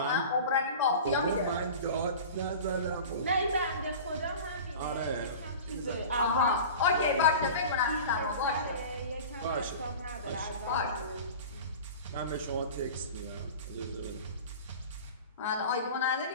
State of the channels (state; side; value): inverted; both; correlation -0.36